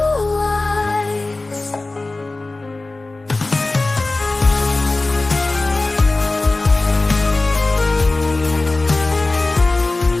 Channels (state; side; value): quieter; right; 3.2 dB